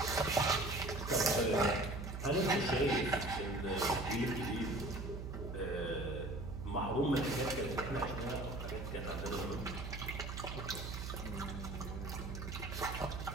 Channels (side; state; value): right; noise; hum, 6 dB below the sound